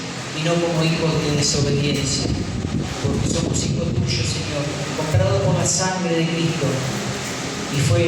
y no como hijos de desobediencia. Porque somos hijos tuyos, Señor, comprados por la sangre de Cristo. Y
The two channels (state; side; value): identical; both; correlation 1.00